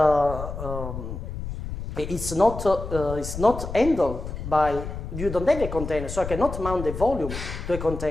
it's not handled by, you don't have a container, so I cannot mount the volume to a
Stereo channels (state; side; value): noise; left; rumble, 8 dB below the sound